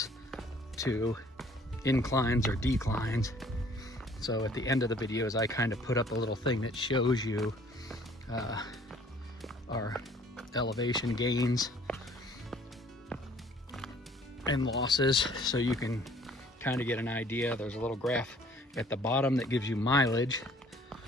to inclines or declines. So at the end of the videos, I kind of put up a little thing that shows you our elevation gains and losses, so you can kind of get an idea. There's a little graph at the bottom that gives you mileage.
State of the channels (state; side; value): normal; both; correlation 0.56